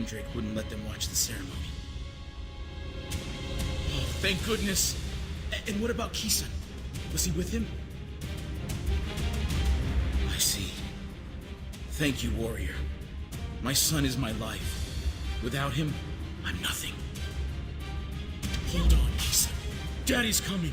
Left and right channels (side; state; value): both; identical; correlation 1.00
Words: wouldn't let them watch the ceremony. Oh, thank goodness. And what about Kisan? Was he with him? I see. Thank you, warrior. My son is my life. Without him, I'm nothing. Hold on, Kisan. Daddy's coming.